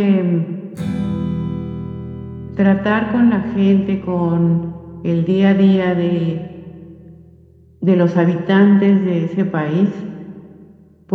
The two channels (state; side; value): identical; both; correlation 1.00